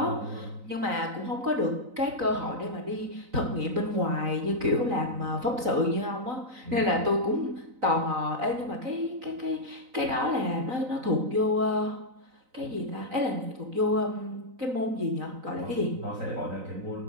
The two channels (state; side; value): late; left; 3.9 ms